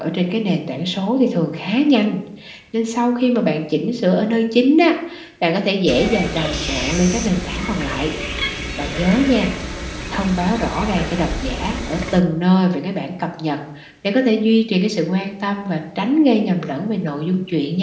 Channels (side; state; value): both; identical; correlation 1.00